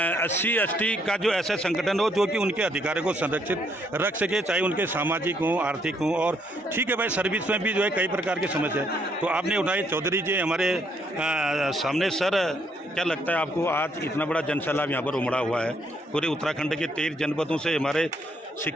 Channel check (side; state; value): both; normal; correlation 0.71